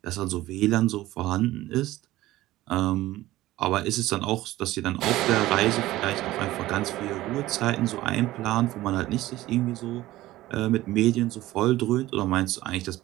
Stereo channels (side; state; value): left; quieter; 16.5 dB